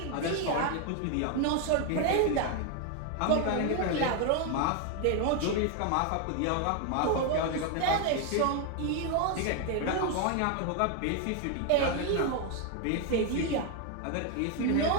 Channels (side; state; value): both; different; correlation 0.01